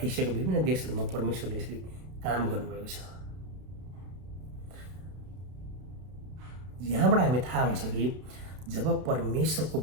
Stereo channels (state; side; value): late; left; 32 ms